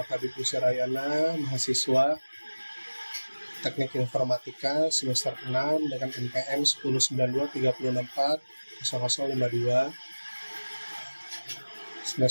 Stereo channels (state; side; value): inverted; both; correlation -1.00